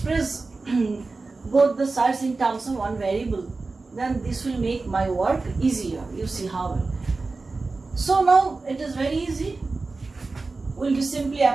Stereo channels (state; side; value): quieter; left; 3.7 dB